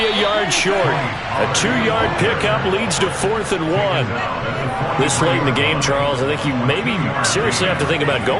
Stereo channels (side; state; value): both; identical; correlation 1.00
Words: a yard short. A 2-yard pickup leads to 4th and 1. This late in the game, Charles, I think you maybe seriously have to think about